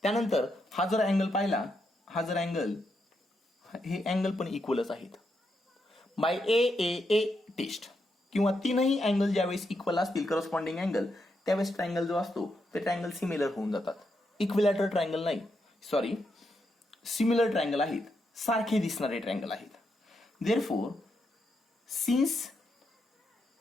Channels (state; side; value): normal; both; correlation 0.82